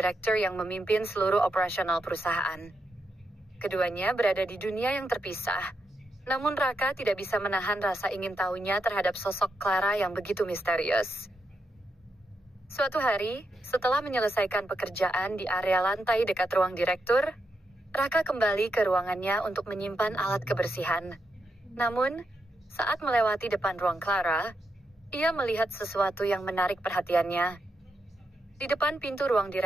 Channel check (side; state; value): both; normal; correlation 0.84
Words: yang memimpin seluruh operasional perusahaan. Keduanya berada di dunia yang terpisah, namun Raka tidak bisa menahan rasa ingin tahunya terhadap sosok Clara yang begitu misterius. Suatu hari, setelah menyelesaikan pekerjaan di area lantai dekat ruang direktur, Raka kembali ke ruangannya untuk menyimpan alat kebersihan. Namun, saat melewati depan ruang Clara, ia melihat sesuatu yang menarik perhatiannya. Di depan pintu ruang